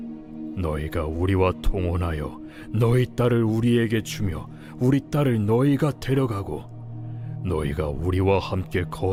너희가 우리와 통혼하여 너희 딸을 우리에게 주며 우리 딸을 너희가 데려가고 너희가 우리와 함께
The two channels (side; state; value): both; identical; correlation 1.00